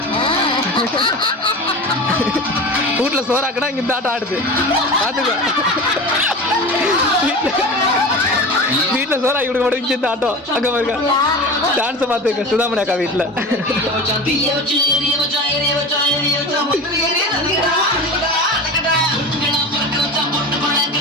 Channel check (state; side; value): normal; both; correlation 0.31